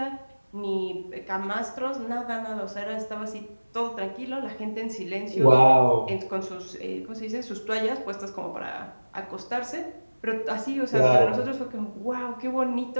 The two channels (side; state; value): both; inverted; correlation -1.00